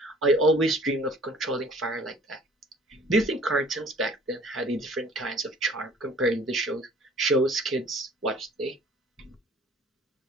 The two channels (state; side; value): normal; both; correlation 0.53